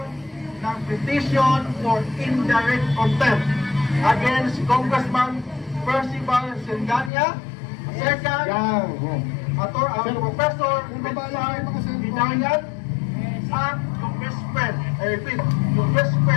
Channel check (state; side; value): drops out; right; at 7.1 s